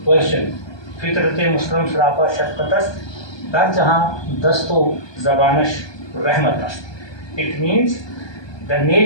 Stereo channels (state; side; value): late; right; 1.2 ms